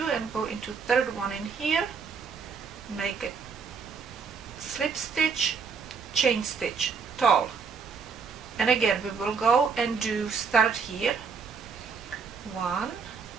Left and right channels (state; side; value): quieter; left; 5.6 dB